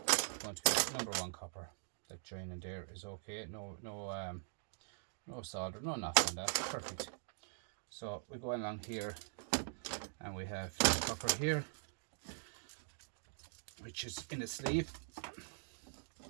going to be number 1 copper. That joining there is okay. No solder, no nothing on that. Perfect. So we go along here and we have copper here, which is in a sleeve.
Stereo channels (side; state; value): left; silent; digital silence